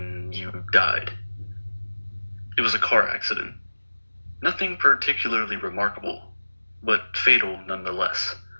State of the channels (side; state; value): both; inverted; correlation -1.00